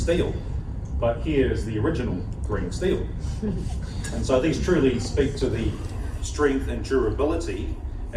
But here is the original green steel. And so these truly speak to the strength and durability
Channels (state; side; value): identical; both; correlation 1.00